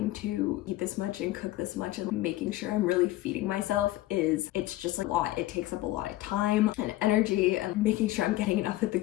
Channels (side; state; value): right; quieter; 16.4 dB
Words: to eat this much and cook this much and making sure I'm really feeding myself it's just like a lot. It takes up a lot of time and energy, and making sure I'm getting enough at the